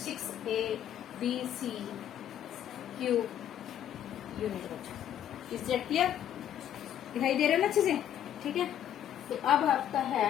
6ABC क्यूब यूनिट बच्चों। Is that clear? दिखाई दे रहा है ना अच्छे से, ठीक है। तो अब आपका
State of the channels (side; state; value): right; quieter; 10.5 dB